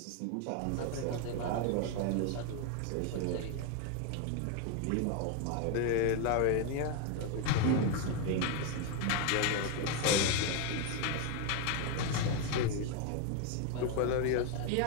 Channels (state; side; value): different; both; correlation 0.01